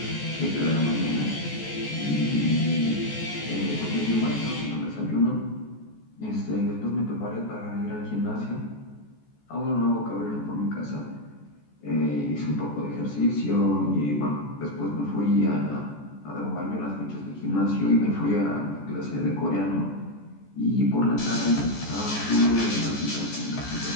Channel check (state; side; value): late; right; 14 ms